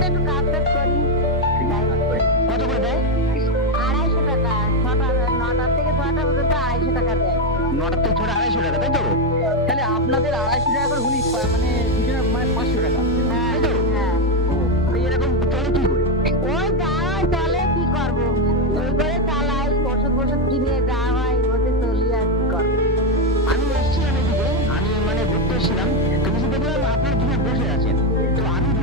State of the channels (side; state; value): both; normal; correlation 0.06